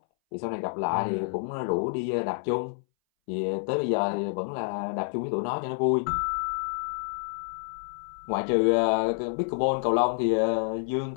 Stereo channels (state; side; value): silent; right; 59 dB below the other